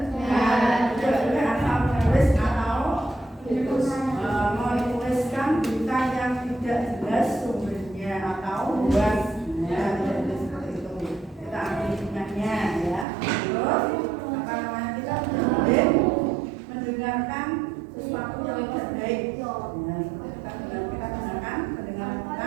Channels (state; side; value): drops out; left; at 13.1 s